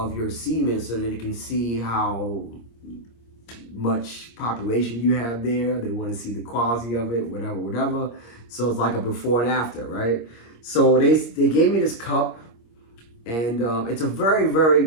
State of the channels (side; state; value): right; late; 26 ms